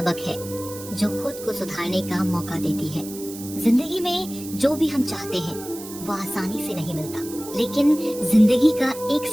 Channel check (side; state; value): right; noise; hiss, 13 dB below the sound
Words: है जो खुद को सुधारने का मौका देती है। जिंदगी में जो भी हम चाहते हैं वो आसानी से नहीं मिलता, लेकिन जिंदगी का एक